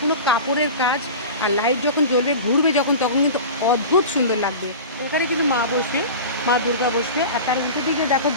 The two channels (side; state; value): both; inverted; correlation -0.32